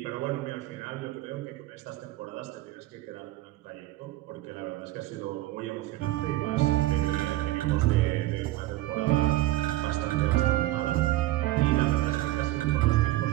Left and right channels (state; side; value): quieter; left; 16.7 dB